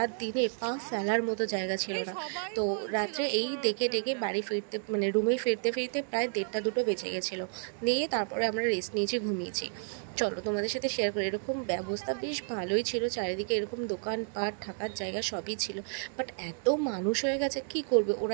দিনে পা ফেলার মতো জায়গা ছিল না। তো রাত্রে এই ডেকে বাড়ি ফিরতে, মানে রুমে ফিরতে প্রায় 1:30 2টো বেজে গেছিলো। নিয়ে তারপরে আমরা রেস্ট নিয়েছি, ঘুমিয়েছি। চলো তোমাদের সাথে শেয়ার করি। এরকম ব্যবস্থা বেশ ভালোই ছিল, চারিদিকে এরকম দোকানপাট, থাকার জায়গা সবই ছিল। বাট এত মানুষ হয়ে গেছে, কি করবে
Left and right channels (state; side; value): silent; left; 57 dB below the other